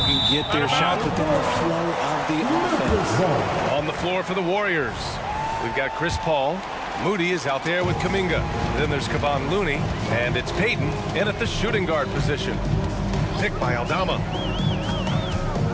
get their shots within the flow of the offense. On the floor for the Warriors, we've got Chris Paul. Moody is out there with Kuminga. Then there's Kevon Looney, and it's Payton in at the shooting guard position. Picked by Aldama.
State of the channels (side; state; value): both; identical; correlation 1.00